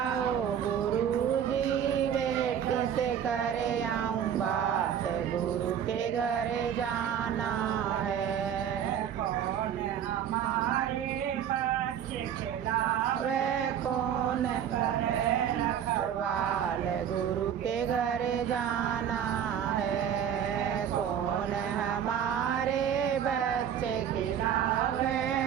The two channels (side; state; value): left; quieter; 9.0 dB